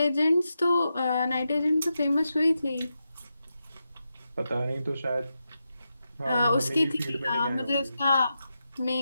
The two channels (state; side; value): inverted; both; correlation -0.88